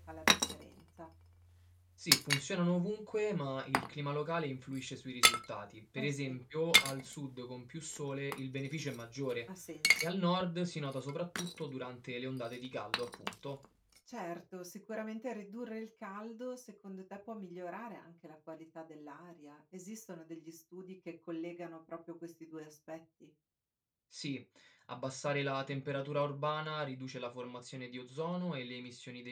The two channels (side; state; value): both; identical; correlation 1.00